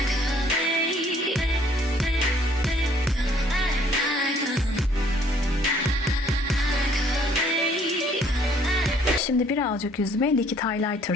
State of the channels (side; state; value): both; normal; correlation 0.61